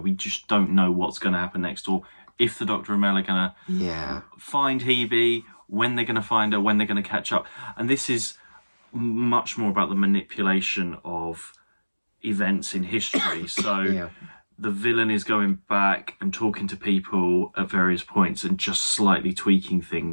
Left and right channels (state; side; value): inverted; both; correlation -1.00